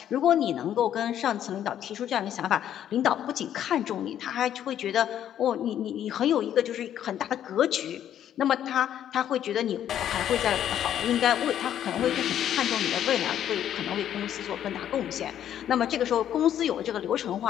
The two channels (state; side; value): quieter; right; 10.5 dB